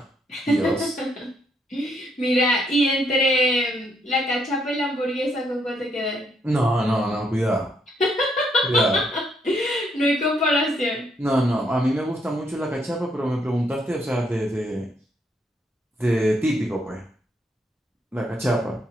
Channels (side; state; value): both; normal; correlation 0.73